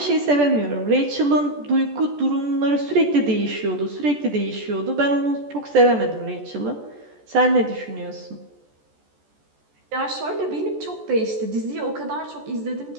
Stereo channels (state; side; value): late; left; 14 ms